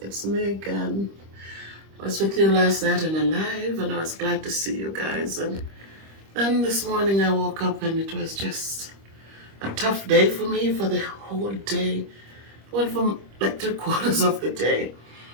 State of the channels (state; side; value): late; left; 25 ms